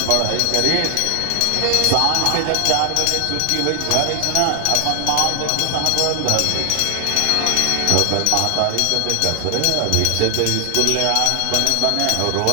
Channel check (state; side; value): different; both; correlation 0.00